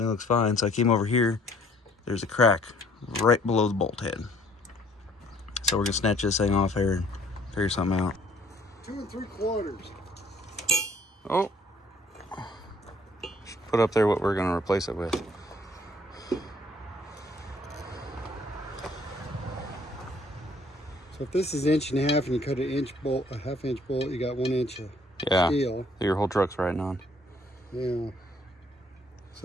looks fine. So I came over here, there's a crack right below the bolt head. So we're gonna snatch this thing off here and figure something out. 2 3/4. Oh. Put up there what we're gonna replace it with. So if this is 1.5 inches and you cut an inch bolt, a 1/2 inch bolt, you got 1 inch of steel. Your whole truck's riding on. Yeah.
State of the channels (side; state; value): both; normal; correlation 0.60